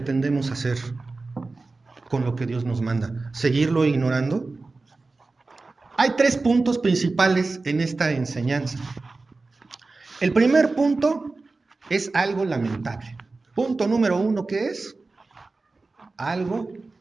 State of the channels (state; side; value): quieter; left; 3.6 dB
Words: hacer con lo que Dios nos manda? ¿Seguirlo ignorando? Hay 3 puntos principales en esta enseñanza. El primer punto es algo lamentable. Punto número 1, ¿qué es? Algo